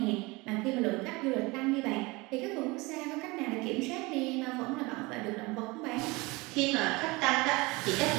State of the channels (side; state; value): left; quieter; 24.0 dB